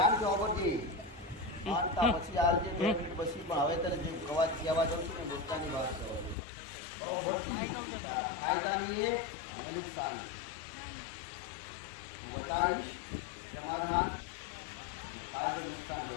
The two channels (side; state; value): right; drops out; at 6.4 s